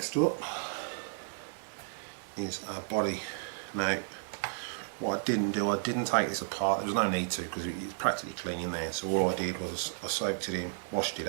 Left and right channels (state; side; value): silent; left; digital silence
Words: up is our body. Now, what I didn't do, I didn't take this apart. There was no need to because it's practically clean in there. So all I did was I soaked it in, washed it